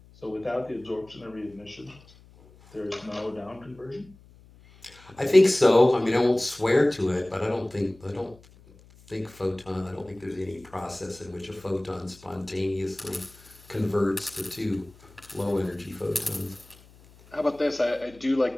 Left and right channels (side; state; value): left; noise; hum, 25 dB below the sound